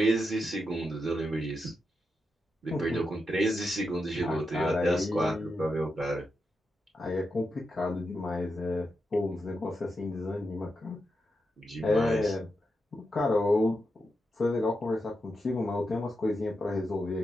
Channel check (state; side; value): normal; both; correlation 0.86